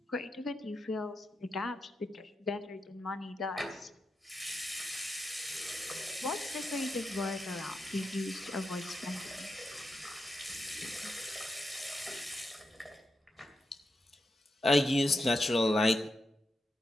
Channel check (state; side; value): normal; both; correlation 0.87